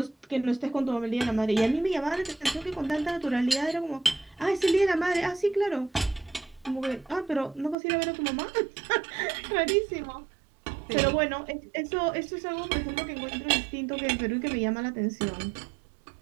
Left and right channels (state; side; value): drops out; left; at 7.8 s